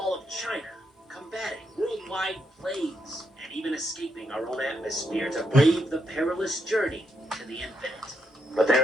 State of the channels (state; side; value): normal; both; correlation 0.79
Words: of China, combating worldwide plagues, and even escaping our own atmosphere to brave the perilous journey to the infinite. But